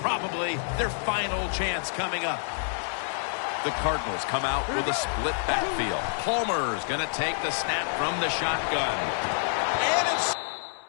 probably their final chance coming up. The Cardinals come out with a split backfield. Palmer's going to take the snap from the shotgun. And it's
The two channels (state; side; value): silent; right; 60 dB below the other